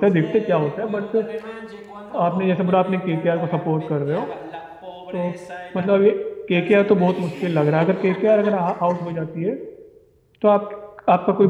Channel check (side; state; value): both; identical; correlation 1.00